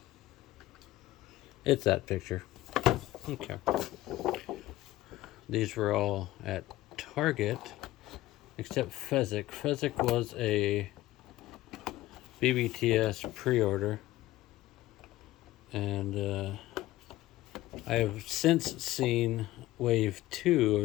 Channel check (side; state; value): right; quieter; 16.4 dB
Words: It's that picture. Okay. These were all at Target, except Fezzik. Fezzik was a BBTS pre-order, and I have since seen wave 2